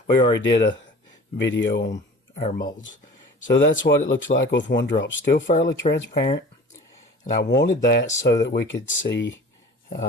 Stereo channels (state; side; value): normal; both; correlation 0.42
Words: we already did a video on our molds. So that's what it looks like with one drop. Still fairly transparent. And I wanted that so that we could see